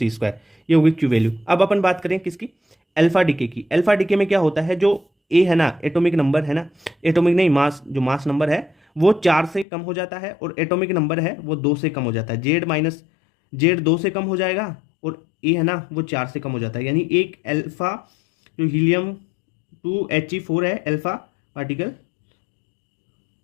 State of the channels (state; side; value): drops out; right; at 9.7 s